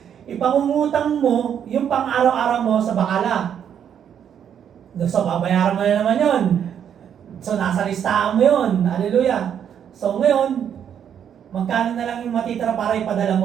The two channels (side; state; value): left; quieter; 8.7 dB